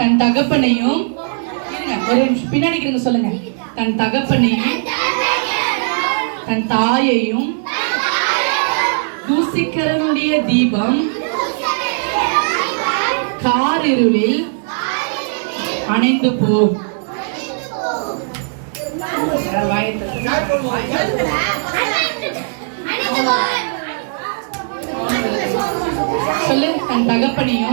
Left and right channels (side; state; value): left; silent; digital silence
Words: தகப்பனையும், ஒரு நிமிஷம் பின்னாடி சொல்லுங்க. தன் தகப்பனையும் தன் தாயையும் தூசிக்கிறனுடைய தீபம் காரிருளில் அணைந்து போ. சொல்லு. தன்